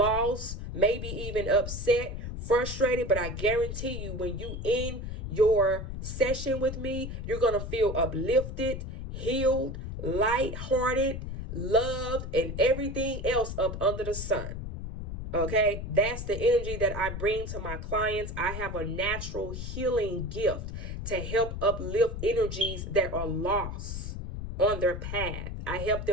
maybe even upset, frustrated, but I guarantee you when you in your session with me, you're going to feel uplifted, healed, lighthearted, loved, and everything else up under the sun. Okay, that's the energy that I bring to my clients. I have a natural healing gift to help uplift energies that are lost on their path. I help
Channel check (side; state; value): left; noise; rumble, 6 dB below the sound